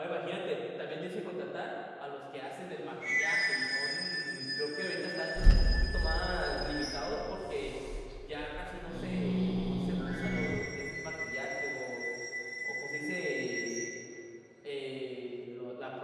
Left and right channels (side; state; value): both; identical; correlation 1.00